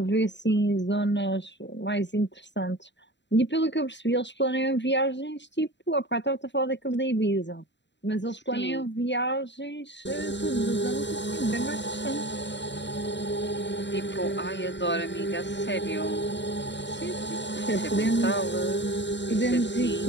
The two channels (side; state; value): right; late; 0.52 ms